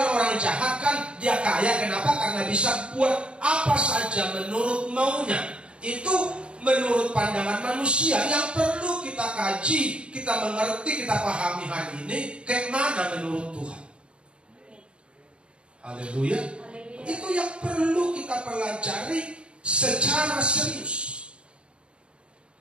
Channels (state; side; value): late; left; 0.055 ms